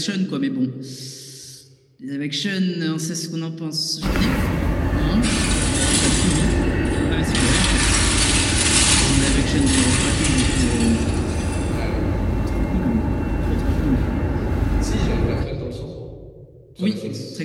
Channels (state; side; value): identical; both; correlation 1.00